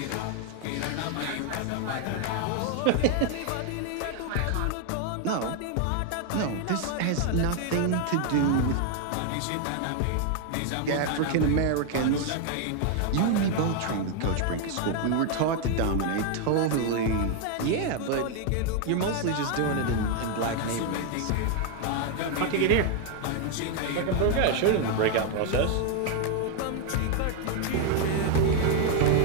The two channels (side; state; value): both; different; correlation 0.01